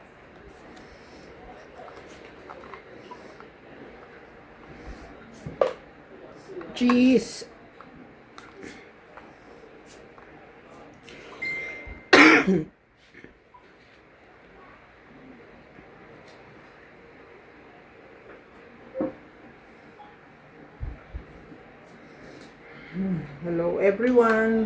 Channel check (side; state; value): both; identical; correlation 1.00